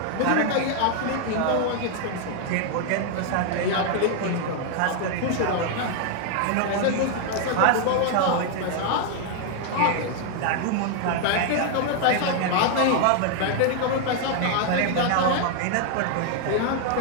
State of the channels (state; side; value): different; both; correlation 0.00